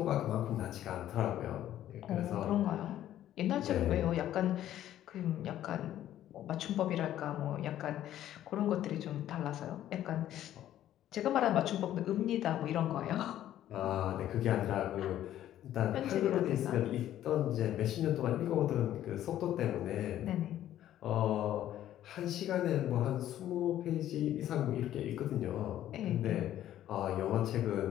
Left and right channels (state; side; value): quieter; right; 12.3 dB